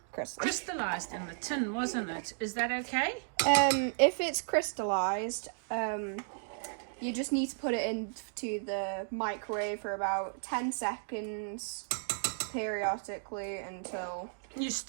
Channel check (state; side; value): silent; left; digital silence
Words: crystallized in the tin, wasn't it? Is that okay? If it's crystallized, you just need to put it into the microwave for about 10 seconds periodically until... You